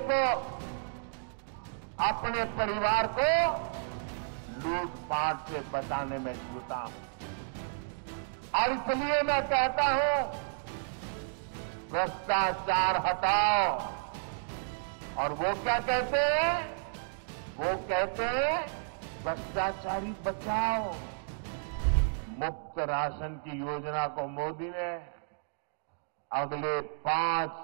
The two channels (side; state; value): left; silent; digital silence